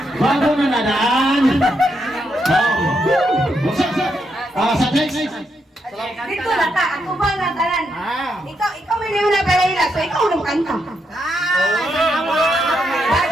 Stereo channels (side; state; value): both; normal; correlation 0.80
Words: Gwapo na nadaan. Sa next. Dito na ta, ako ba na tanan? Ikaw may niyo na palahila, so ikaw na kanta.